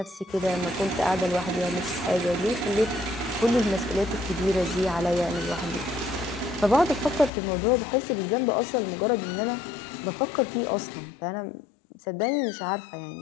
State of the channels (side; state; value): right; drops out; at 7.3 s